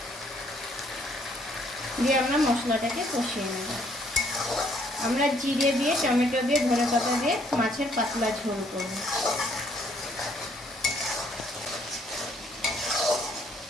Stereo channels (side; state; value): both; normal; correlation 0.66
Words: দিয়ে আমরা মশলাটাকে কষিয়ে নেব। আমরা জিরে দিয়ে, টমেটো দিয়ে, ধনেপাতা দিয়ে মাছের পাতলা ঝোল করব।